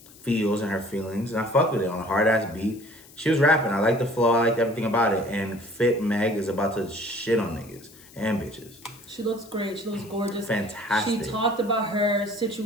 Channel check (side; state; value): left; noise; hiss, 23 dB below the sound